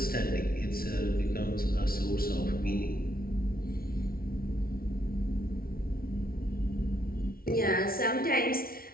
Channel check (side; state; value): right; late; 0.43 ms